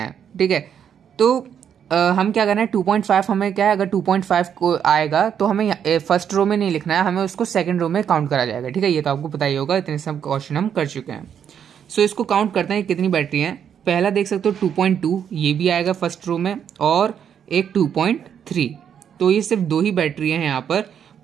ठीक है, तो हम क्या करना है, 2.5 हमें क्या है, अगर 2.5 को आएगा तो हमें फर्स्ट रो में नहीं लिखना है, हमें उसको सेकंड रो में काउंट करा जाएगा। ठीक है, ये तो आपको पता ही होगा, इतने सब क्वेश्चन हम कर चुके हैं। सो इसको काउंट करते हैं कितनी बैटरी हैं। पहला देख सकते हो 2.2, ये भी आएगा फर्स्ट रो में, और एक 2.3। तो ये सिर्फ 2 ही बैटरी हैं यहाँ पर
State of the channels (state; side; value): quieter; left; 8.4 dB